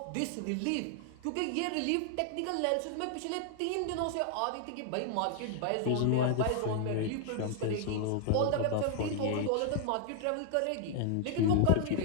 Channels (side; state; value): both; different; correlation 0.00